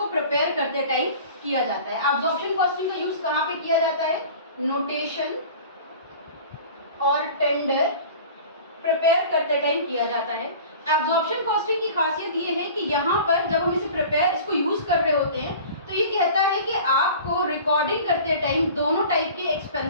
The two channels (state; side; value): inverted; both; correlation -0.41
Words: प्रिपेयर करते टाइम किया जाता है। एब्जॉर्प्शन कॉस्टिंग का यूज कहाँ पे किया जाता है? नोटेशन और टेंडर प्रिपेयर करते टाइम किया जाता है। एब्जॉर्प्शन कॉस्टिंग की खासियत ये है कि यहाँ पर जब हम इसको यूज कर रहे होते हैं तो ये कहता है कि आपको रिकॉर्डिंग करते टाइम दोनों टाइप के